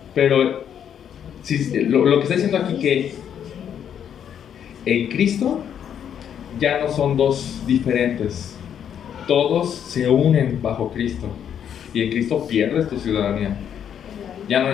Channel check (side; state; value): right; quieter; 8.9 dB